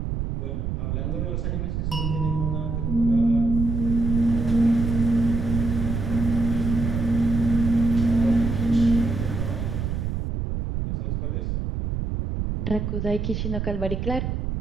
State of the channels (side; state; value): right; noise; rumble, 2 dB below the sound